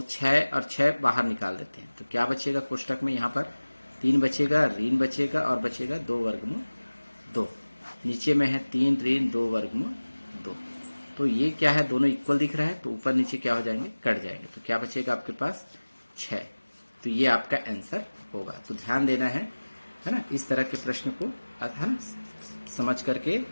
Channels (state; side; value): inverted; both; correlation -1.00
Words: 6 और 6 बाहर निकाल देते हैं, तो क्या बचेगा कोष्टक में? यहाँ पर 3 बचेगा, ऋण बचेगा और बचेगा 2 वर्गमूल 2। नीचे में है 3 ऋण 2 वर्गमूल 2। तो ये क्या है, दोनों इक्वल दिख रहा है, तो ऊपर नीचे क्या हो जाएंगे, कट जाएंगे। तो क्या बचेगा आपके पास? 6। तो ये आपका आंसर होगा। तो ध्यान देना है ना, इस तरह के प्रश्न को है ना समझ करके